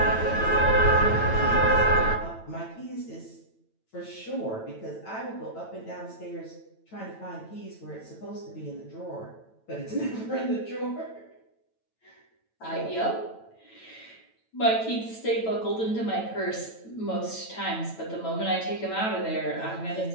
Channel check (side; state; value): right; late; 9.0 ms